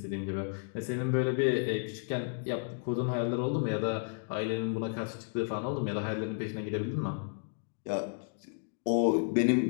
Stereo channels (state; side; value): silent; right; digital silence